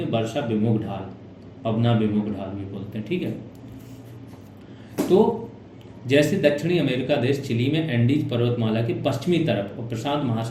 हैं वर्षा विमुख ढाल, पवना विमुख ढाल भी बोलते हैं, ठीक है। तो जैसे दक्षिणी अमेरिका देश चिली में एंडीज पर्वतमाला के पश्चिमी तरफ और प्रशांत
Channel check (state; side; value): identical; both; correlation 1.00